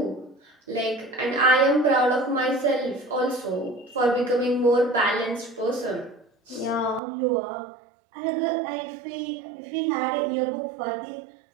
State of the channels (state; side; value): drops out; left; at 7.0 s